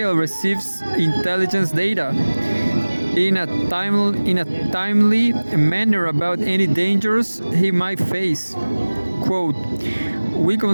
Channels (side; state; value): both; inverted; correlation -1.00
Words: receives intelligence data in a timely manner about any dangers he might face. Quote, we